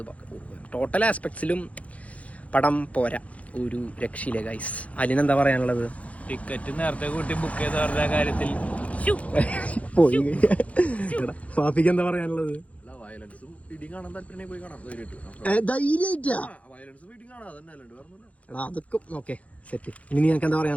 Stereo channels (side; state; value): right; late; 0.066 ms